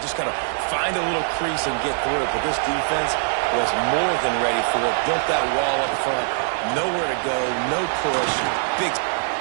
got to find a little crease and get through it. But this defense was more than ready for it. Built that wall up front. Nowhere to go. No push. Big.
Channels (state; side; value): silent; left; 64 dB below the other